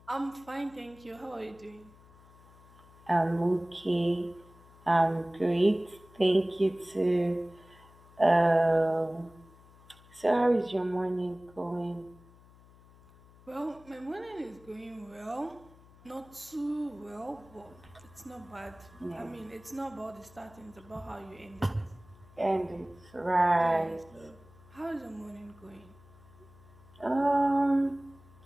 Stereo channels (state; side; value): noise; left; hum, 24 dB below the sound